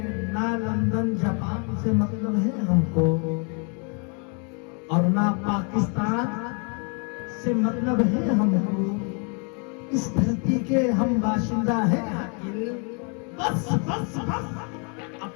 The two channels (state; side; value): quieter; right; 37.5 dB